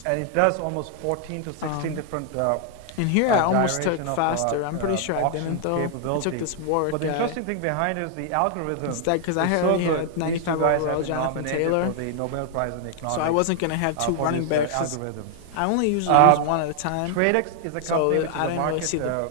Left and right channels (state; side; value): different; both; correlation 0.00